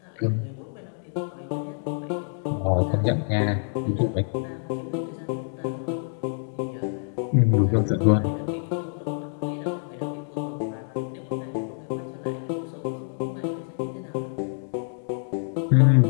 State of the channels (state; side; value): silent; right; 61 dB below the other